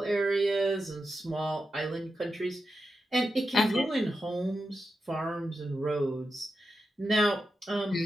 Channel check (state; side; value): normal; both; correlation 0.89